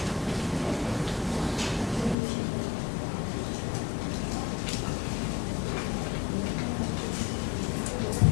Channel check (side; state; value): right; drops out; at 2.1 s